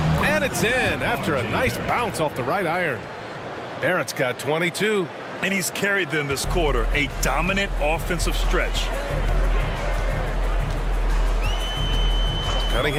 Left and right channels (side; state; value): both; identical; correlation 1.00